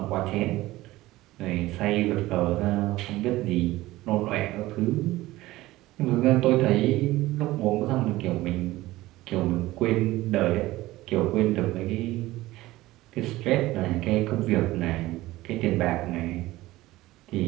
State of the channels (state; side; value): quieter; left; 17.6 dB